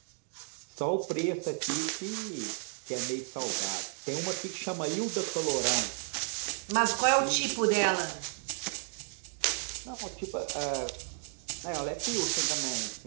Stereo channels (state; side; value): silent; left; 56 dB below the other